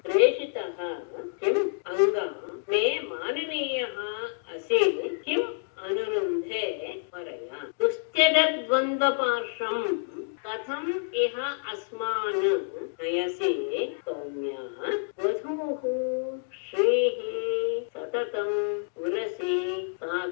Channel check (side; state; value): right; silent; digital silence